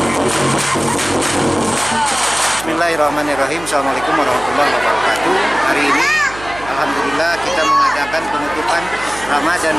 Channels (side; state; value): right; noise; hum, 15 dB below the sound